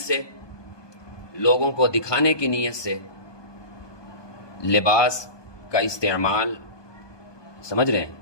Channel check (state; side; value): late; right; 1.2 ms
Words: لوگوں کو دکھانے کی نیت سے لباس کا استعمال، سمجھ رہے ہیں،